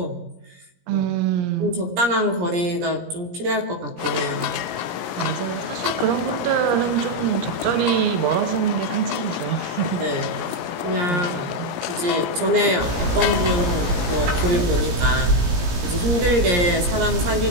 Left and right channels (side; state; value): left; late; 17 ms